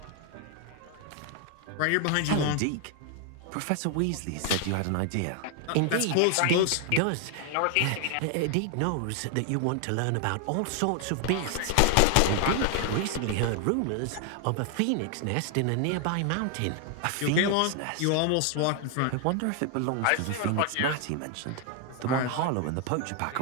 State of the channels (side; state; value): both; different; correlation 0.00